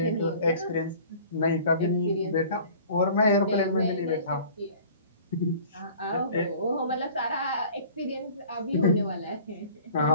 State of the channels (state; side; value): inverted; both; correlation -0.48